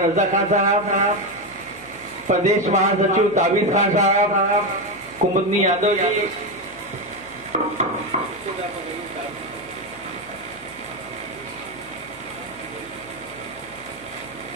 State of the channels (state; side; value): noise; right; hum, 26 dB below the sound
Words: रजा खान साहब, प्रदेश महासचिव ताबिज खान साहब, कुमुदनी यादव जी,